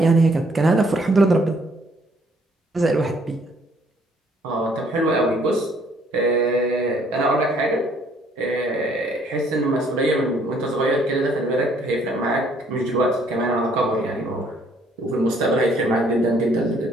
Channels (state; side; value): normal; both; correlation 0.64